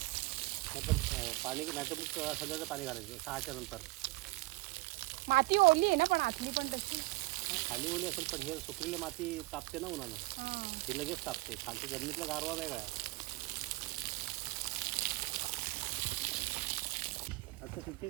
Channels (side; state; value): left; quieter; 21.6 dB